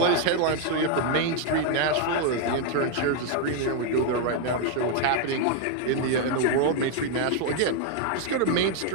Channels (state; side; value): different; both; correlation 0.00